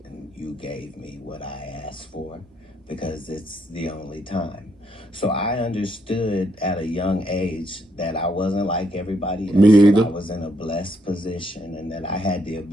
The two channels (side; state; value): both; normal; correlation 0.75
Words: And you gave me what I asked for because it's the only time. So I understood at a young age that I wasn't like everybody else. Me either. I was in a blessed position and that I had the